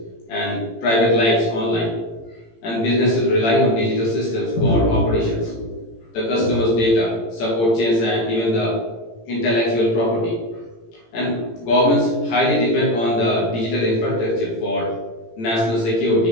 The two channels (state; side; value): late; right; 18 ms